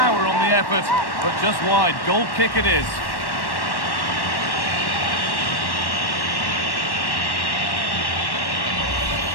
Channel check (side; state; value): right; late; 1.1 ms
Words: on the effort, but just wide. Goal kick it is.